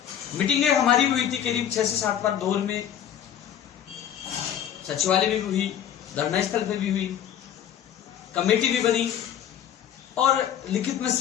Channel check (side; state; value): right; quieter; 9.8 dB